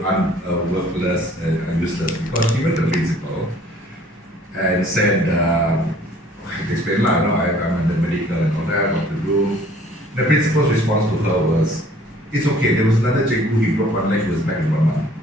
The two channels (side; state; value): both; normal; correlation 0.55